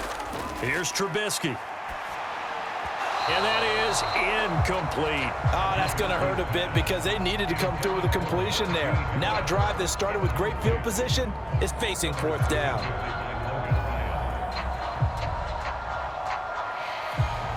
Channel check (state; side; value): identical; both; correlation 1.00